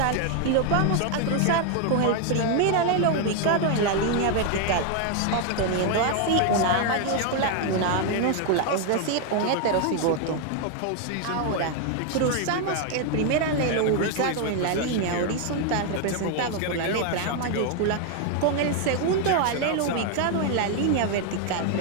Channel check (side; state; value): both; different; correlation 0.01